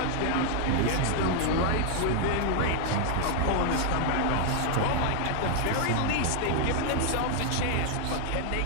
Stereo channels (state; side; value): different; both; correlation 0.00